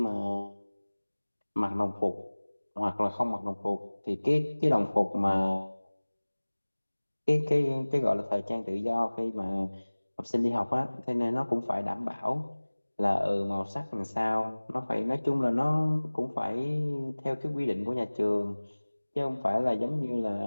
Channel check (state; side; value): inverted; both; correlation -1.00